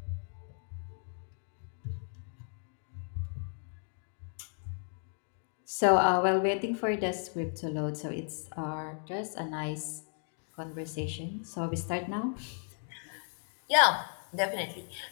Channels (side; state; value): right; silent; 55 dB below the other